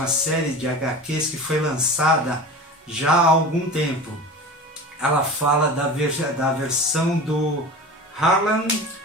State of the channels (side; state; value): both; normal; correlation 0.34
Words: série de HQs que foi lançada já há algum tempo. Ela fala da versão do Harlan